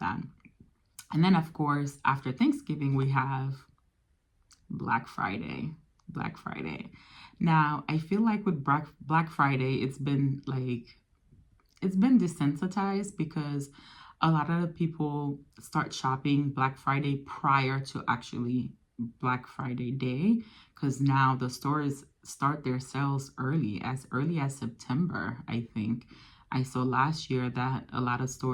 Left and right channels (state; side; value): identical; both; correlation 1.00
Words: that. And then, of course, after Thanksgiving, we have Black Friday. Black Friday. Now, I feel like with Black Friday, it's been desensitized because a lot of people start shopping Black Friday prior to actually Black Friday Day, because now the stores start their sales early as September. I think I saw last year that a lot of